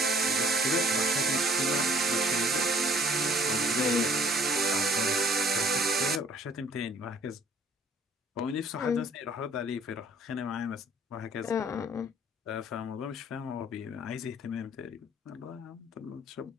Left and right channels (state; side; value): normal; both; correlation 0.56